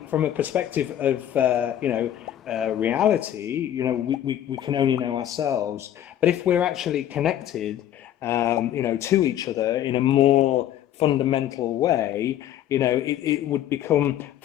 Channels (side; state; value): right; quieter; 11.5 dB